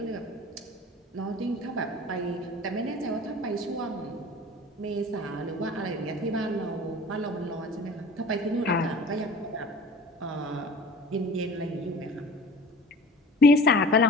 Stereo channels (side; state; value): both; normal; correlation 0.42